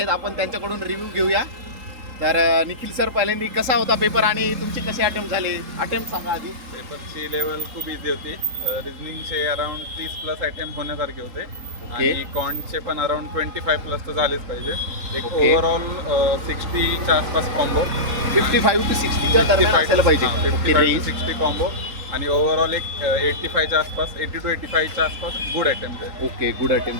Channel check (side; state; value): left; late; 3.8 ms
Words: आपण त्यांच्याकडून रिव्ह्यू घेऊया. तर निखिल सर, पहिल्यांदा कसा होता पेपर आणि तुमचे कसे अटेम्प्ट झाले? अटेम्प्ट सांगा आधी. पेपरची लेवल खूप इझी होती. रिझनिंगचे अराउंड 30+ अटेम्प्ट होण्यासारखे होते आणि कॉन्टचे पण अराउंड 25+ तर झालेच पाहिजे. एक ओव्हरऑल 60च्या आसपास कॉम्बो, 55 to 60च्या दरम्यान असायला पाहिजे. 55 to 60 कॉम्बो आणि ओव्हरऑल एक 85च्या आसपास, 80 to 85च्या आसपास गुड अटेम्प्ट आहे. ओके, गुड अटेम्प्ट,